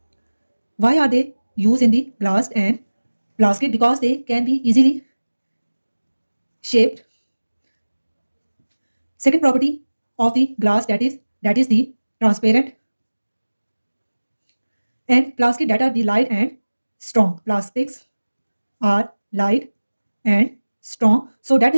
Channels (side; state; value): both; inverted; correlation -1.00